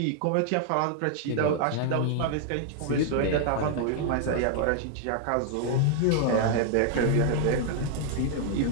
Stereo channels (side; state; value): both; different; correlation 0.00